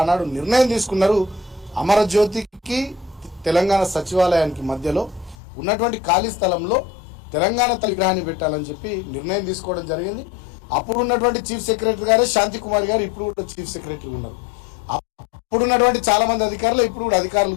ఆనాడు నిర్ణయం తీసుకున్నారు. అమరజ్యోతికి తెలంగాణ సచివాలయానికి మధ్యలో ఉన్నటువంటి ఖాళీ స్థలంలో తెలంగాణ తల్లి విగ్రహాన్ని పెట్టాలని చెప్పి నిర్ణయం తీసుకోవడం జరిగింది. అప్పుడు ఉన్నటువంటి చీఫ్ సెక్రటరీ గారే శాంతి కుమార్ గారు ఇప్పుడు కూడా చీఫ్ సెక్రటరీ ఉన్నారు. అప్పుడు ఉన్నటువంటి చాలా మంది అధికారులు ఇప్పుడు కూడా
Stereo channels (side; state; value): right; drops out; at 5.4 s